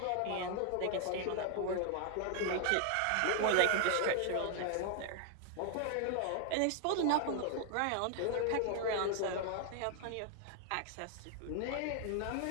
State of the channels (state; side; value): different; both; correlation 0.00